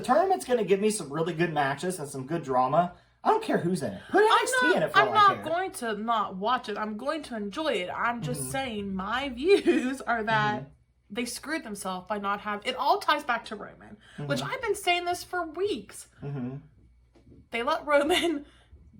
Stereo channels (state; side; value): identical; both; correlation 1.00